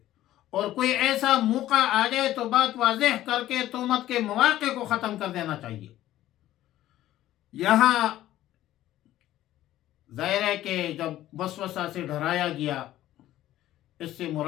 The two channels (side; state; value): right; quieter; 13.9 dB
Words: اور کوئی ایسا موقع آ جائے تو بات واضح کر کے تہمت کے مواقع کو ختم کر دینا چاہیے. یہاں ظاہر ہے کہ جب وسوسہ سے ڈرایا گیا، اس سے